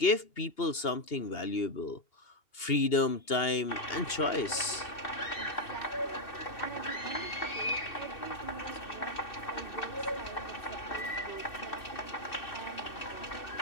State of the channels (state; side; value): late; right; 2.8 ms